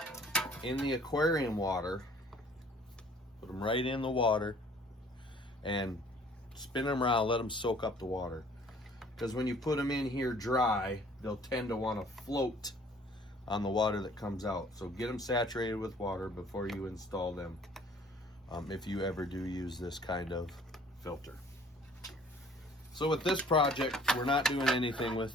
in the aquarium water, put them right in the water, and spin them around, let them soak up the water. Because when you put them in here dry, they'll tend to want to float on the water that comes out. So get them saturated with water before you install them, if you ever do use this kind of filter. So with this project, we're not doing anything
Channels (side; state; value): both; normal; correlation 0.54